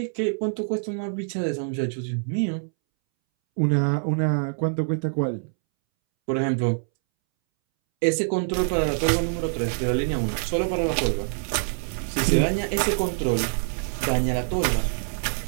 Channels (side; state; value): left; silent; 62 dB below the other